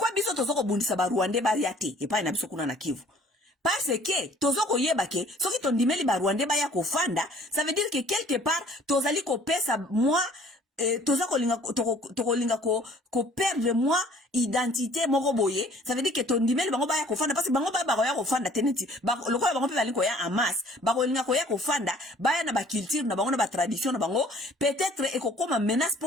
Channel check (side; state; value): both; normal; correlation 0.54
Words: biso tozoko bundisa ba Rwandais ba yate e pa na biso kuna na Kivu? Parce que tozoko yeba ke soki tondimeli ba Rwandais ba ya ko fanda, ça veut dire que quelque part tozali ko pesa moi toza kolinga ko perdre moi identité moko boye. Ça veut dire que ton dimel bango ba ya ko fanda parce que bango ba ya ko fanda teneti lokola bango pe bali ko ya amas ba kolinga ko ya ko fanda ba ya na ba culture na bango na ba tradition na bango peut-être e ko koma menace